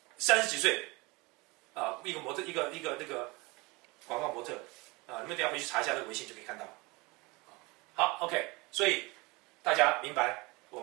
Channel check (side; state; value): left; quieter; 24.9 dB